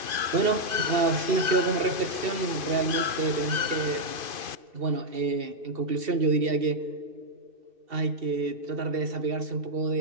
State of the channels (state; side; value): late; left; 2.5 ms